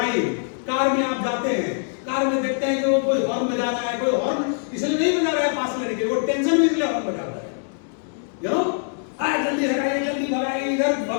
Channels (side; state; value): right; silent; 63 dB below the other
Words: कार में आप जाते हैं, कार में देखते हैं कि वो कोई हॉर्न बजा रहा है, कोई हॉर्न इसलिए नहीं बजा रहा है पास लेने के लिए, वो टेंशन में इसलिए हॉर्न बजा रहा है। यू नो, जल्दी हटाइए, जल्दी भगाइए, इधर